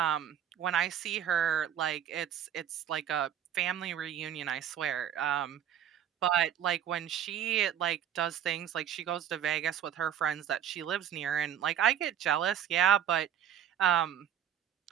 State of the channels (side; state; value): left; quieter; 9.5 dB